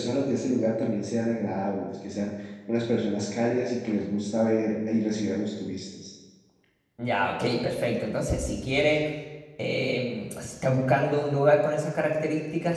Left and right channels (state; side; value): identical; both; correlation 1.00